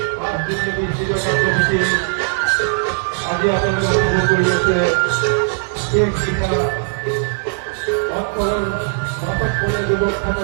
5 দিনের নিশ্চিত কার্যসূচি আজি আপনাদের খবর করিয়েছে শেখ শিখা বর্তমান নাটক করে যুবক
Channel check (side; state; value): left; silent; digital silence